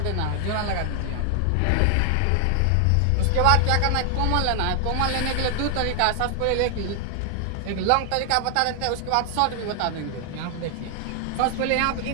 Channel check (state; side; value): different; both; correlation 0.00